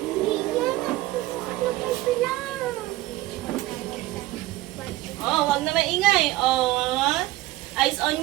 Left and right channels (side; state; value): left; quieter; 17.5 dB